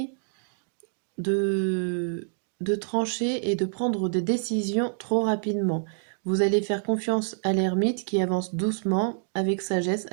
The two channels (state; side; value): silent; left; digital silence